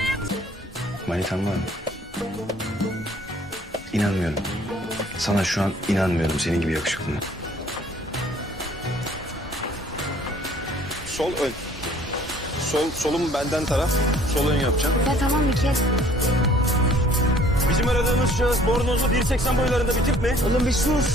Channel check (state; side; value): normal; both; correlation 0.57